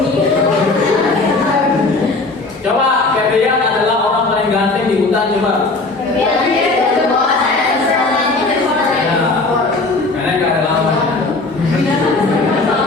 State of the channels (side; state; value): right; quieter; 3.4 dB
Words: Coba Febrian adalah orang paling ganteng di hutan coba. Karena nggak ada lawannya.